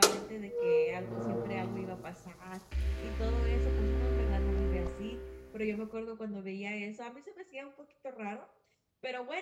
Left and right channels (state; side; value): identical; both; correlation 1.00